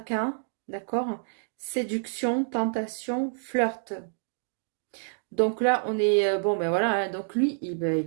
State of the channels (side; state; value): left; silent; digital silence